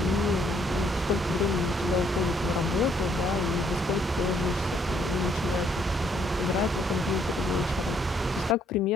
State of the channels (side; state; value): both; normal; correlation 0.69